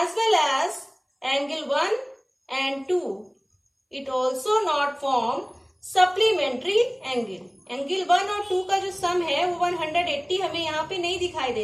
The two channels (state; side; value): identical; both; correlation 1.00